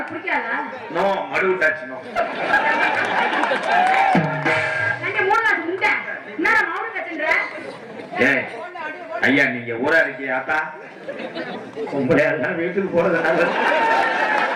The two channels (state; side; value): identical; both; correlation 1.00